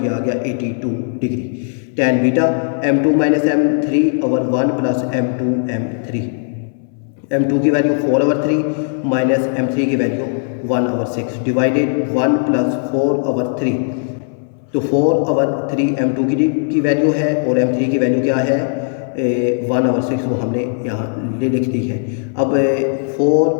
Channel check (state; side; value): silent; right; 65 dB below the other